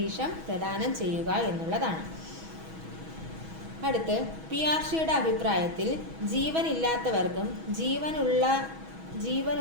പ്രദാനം ചെയ്യുക എന്നുള്ളതാണ്. അടുത്ത് പിയാഷെയുടെ അഭിപ്രായത്തിൽ ജീവനില്ലാത്തവർക്കും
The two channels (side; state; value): left; late; 6.2 ms